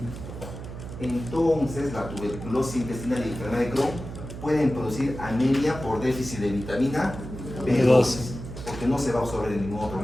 Entonces, la tuberculosis intestinal y la enfermedad de Crohn pueden producir anemia por déficit de vitamina B12, porque no se va a absorber en ningún otro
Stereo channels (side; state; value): right; noise; hum, 10 dB below the sound